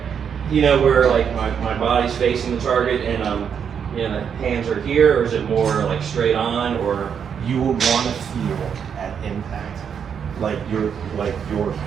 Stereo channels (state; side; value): quieter; left; 7.5 dB